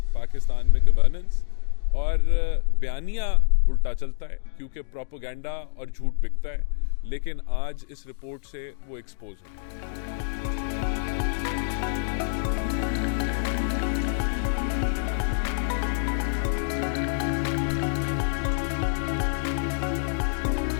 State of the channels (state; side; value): silent; right; digital silence